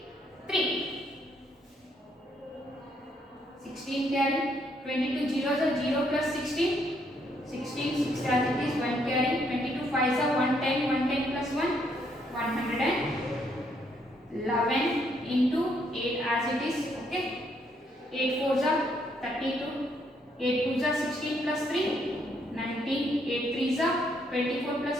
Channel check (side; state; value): both; normal; correlation 0.72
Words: 16 carry. 22 zeros are 0 plus 16. 16 6 as it is. 1 carry. 22 5s are 110. 110 plus 1. 111 into 8 as it is. Okay. 8 4s are 32. 8 2s are 16 plus 3. 19. 8 3s are 24 plus